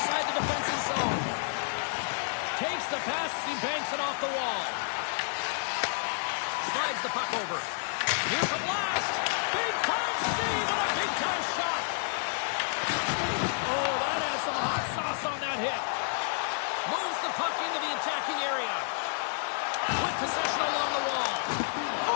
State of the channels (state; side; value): silent; right; digital silence